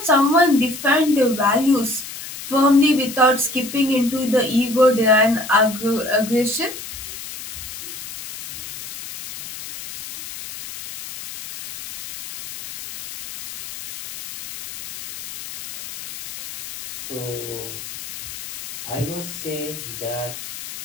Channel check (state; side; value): noise; left; hiss, 11 dB below the sound